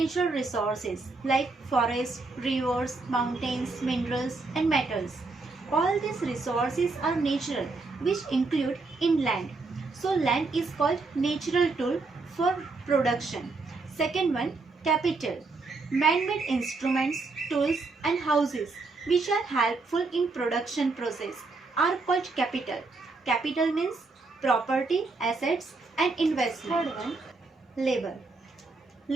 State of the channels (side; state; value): left; quieter; 3.7 dB